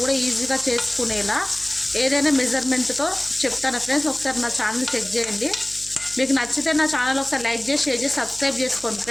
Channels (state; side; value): noise; right; hum, 19 dB below the sound